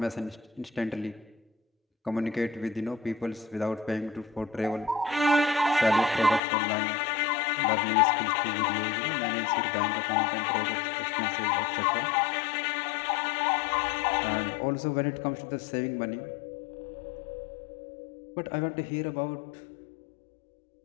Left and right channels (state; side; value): drops out; right; at 6.4 s